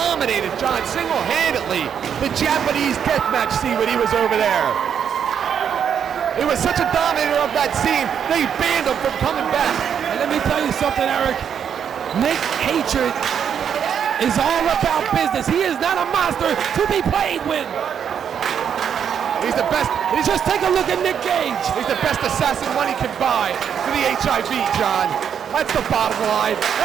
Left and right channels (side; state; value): left; quieter; 8.1 dB